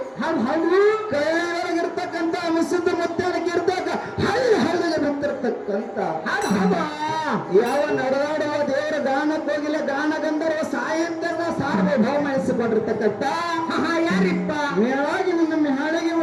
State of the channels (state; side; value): identical; both; correlation 1.00